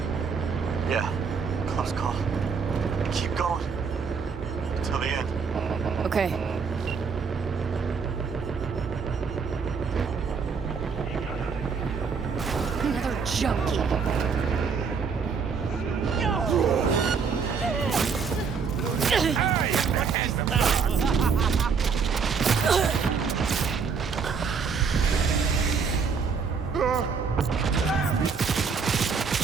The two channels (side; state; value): left; quieter; 5.7 dB